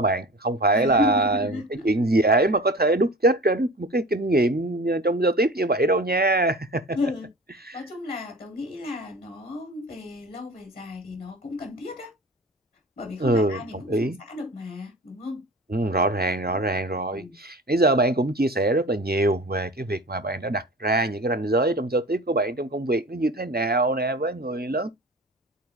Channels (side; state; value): both; normal; correlation 0.38